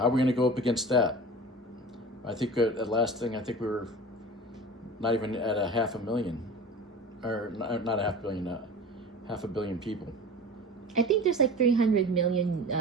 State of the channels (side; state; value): both; normal; correlation 0.36